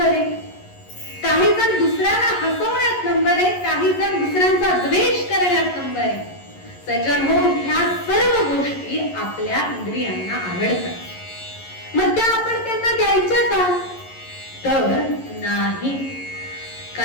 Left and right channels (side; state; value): right; late; 11 ms